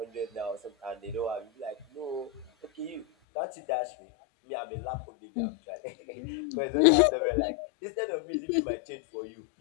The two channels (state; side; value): drops out; right; at 3.1 s